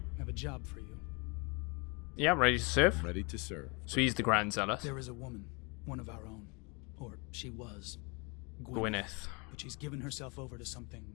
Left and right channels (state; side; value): quieter; right; 30.6 dB